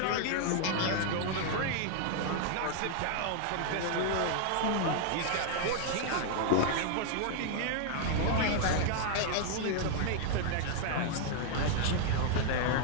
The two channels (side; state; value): both; different; correlation 0.00